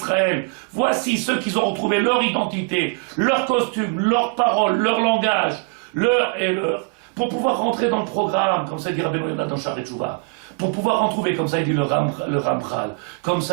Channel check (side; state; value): left; quieter; 36.9 dB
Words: voici ceux qui ont retrouvé leur identité, leur costume, leurs paroles, leur langage, leur et leur, pour pouvoir rentrer dans le programme, comme ça dit Rabbeinu Yonah dans Sha'arei Teshuvah, pour pouvoir en trouver, comme ça il dit le Ramchal, comme